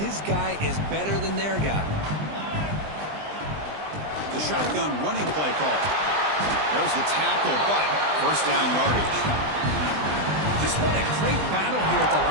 guy is better than their guy. The shotgun running play call. There's the tackle, but first down yardage. Just what a great battle here at the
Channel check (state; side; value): late; left; 20 ms